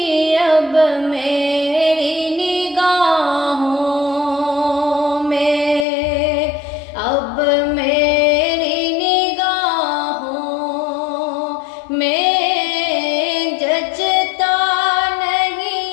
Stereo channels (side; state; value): right; drops out; at 5.9 s